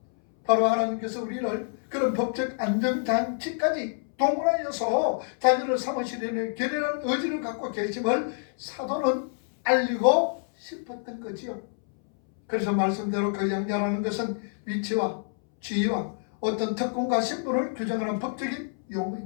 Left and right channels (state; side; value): silent; right; 60 dB below the other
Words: 바로 하나님께서 우리를 그런 법적 안정장치까지 동원하여서 자녀를 삼으시려는 결연한 의지를 갖고 계심을 사도는 알리고 싶었던 거지요. 그래서 말씀대로 그 양자라는 것은 위치와 지위와 어떤 특권과 신분을 규정하는 법적인